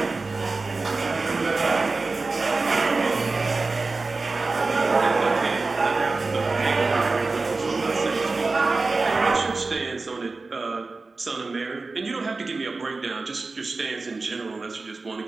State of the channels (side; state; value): left; quieter; 3.7 dB